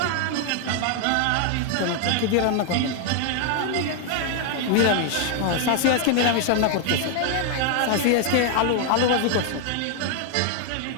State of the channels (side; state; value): both; different; correlation 0.00